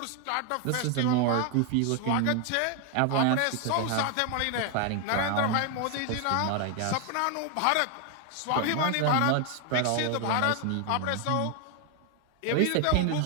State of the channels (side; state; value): both; different; correlation 0.01